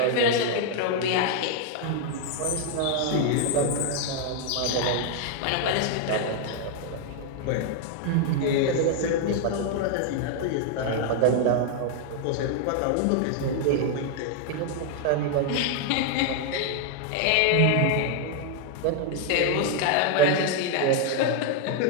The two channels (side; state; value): both; different; correlation 0.00